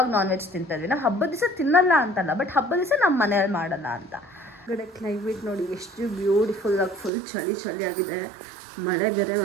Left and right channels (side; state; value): left; drops out; at 7.1 s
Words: ನಾನ್ ವೆಜ್ ತಿಂತಾ ಇದ್ವಿ. ನಾವು ಹಬ್ಬದ ದಿವಸ ತಿನ್ನಲ್ಲ ಅಂತಲ್ಲ, ಬಟ್ ಹಬ್ಬದ ದಿವಸ ನಮ್ಮ ಮನೆಯಲ್ಲಿ ಮಾಡಲ್ಲ ಅಂತ. ಕಡೆ ಕ್ಲೈಮೇಟ್ ನೋಡಿ ಎಷ್ಟು ಬ್ಯೂಟಿಫುಲ್ಲಾಗಿ, ಫುಲ್ ಚಳಿ ಆಗಿದೆ. ಮಳೆ ಬೇರೆ